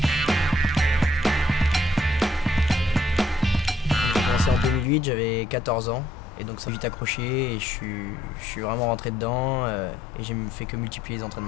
J'ai commencé en 2008, j'avais 14 ans et donc ça m'a vite accroché et je suis vraiment rentré dedans et j'ai fait que multiplier les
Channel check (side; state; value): both; normal; correlation 0.68